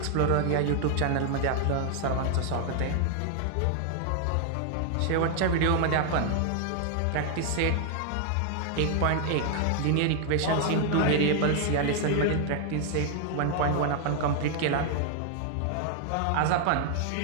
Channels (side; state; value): both; different; correlation 0.00